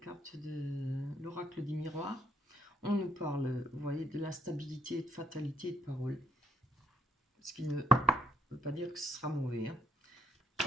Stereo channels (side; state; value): both; normal; correlation 0.70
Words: de l'oracle des miroirs. On nous parle, vous voyez, de l'instabilité, de fatalité, de parole. Ce qui ne veut pas dire que ce sera mauvais, hein.